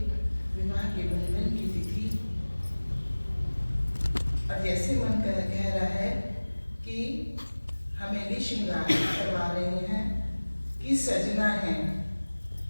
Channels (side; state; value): both; inverted; correlation -1.00